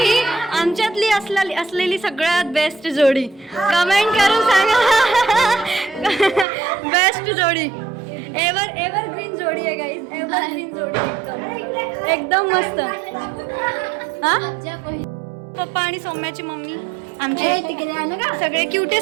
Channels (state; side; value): drops out; left; at 6.5 s